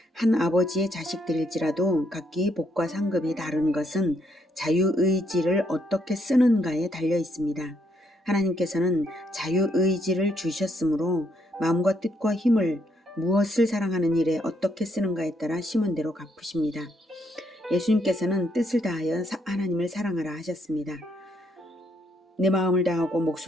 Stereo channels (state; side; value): normal; both; correlation 0.73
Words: 한 아버지의 자식들일지라도 각기 복과 상급이 다른 것은 자유의지를 어떻게 쓰는가에 달려 있습니다. 하나님께서는 자유의지를 주셨으므로 마음과 뜻과 힘을 무엇을 사랑하는 일에 어떻게 쓰는가에 따라 심은 대로 갚으십니다. 예수님께서는 뜻을 다하여 하나님을 사랑하라 하셨습니다. 내 마음을 다하고